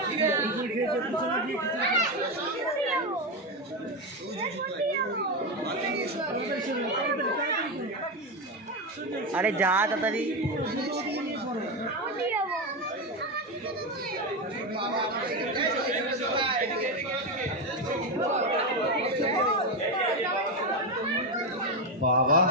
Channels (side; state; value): both; normal; correlation 0.12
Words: আরে যা তাড়াতাড়ি। বাবা